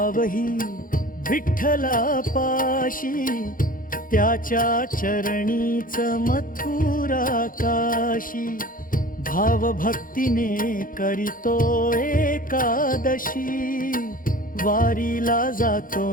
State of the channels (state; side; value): late; right; 0.40 ms